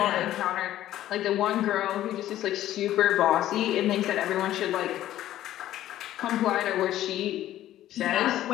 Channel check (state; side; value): quieter; right; 13.3 dB